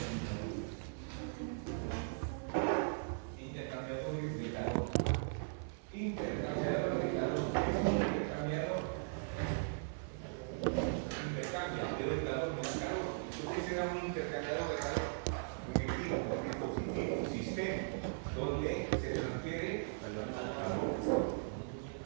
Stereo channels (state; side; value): silent; left; 52 dB below the other